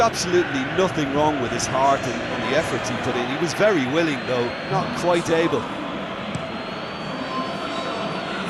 nothing wrong with his heart and the efforts he put in. He was very willing, though, not quite able.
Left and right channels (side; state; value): both; identical; correlation 1.00